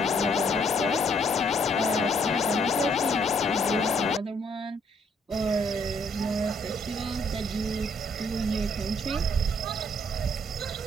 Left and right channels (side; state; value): both; normal; correlation 0.68